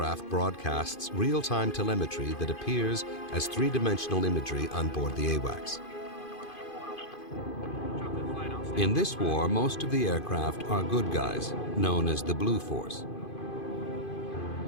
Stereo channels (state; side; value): late; right; 2.5 ms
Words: broadcasts real-time telemetry that appears as three-dimensional imagery on board the AWACS. In this war, most of the aircraft are good guys, known as the Blue Force.